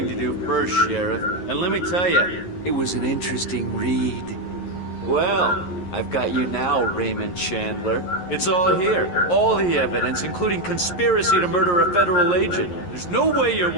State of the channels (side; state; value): right; late; 11 ms